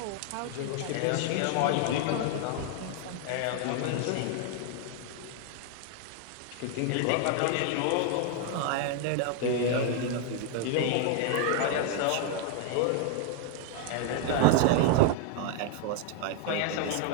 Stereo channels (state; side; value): different; both; correlation 0.00